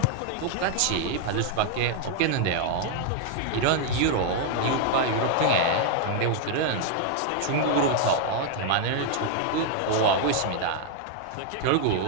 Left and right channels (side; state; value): both; different; correlation 0.00